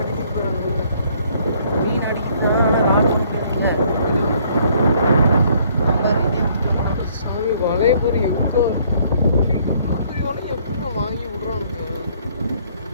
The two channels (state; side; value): inverted; both; correlation -0.63